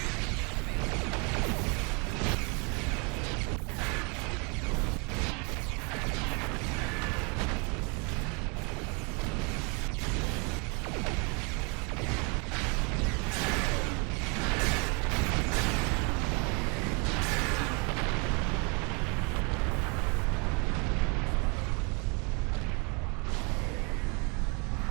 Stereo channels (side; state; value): left; quieter; 32.6 dB